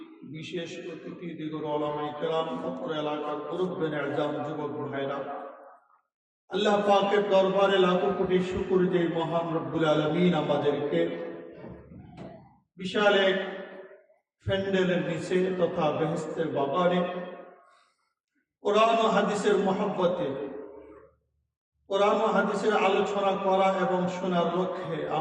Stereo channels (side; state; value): both; identical; correlation 1.00